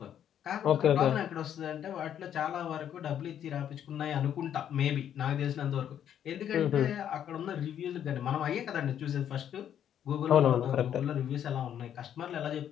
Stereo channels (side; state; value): right; quieter; 9.8 dB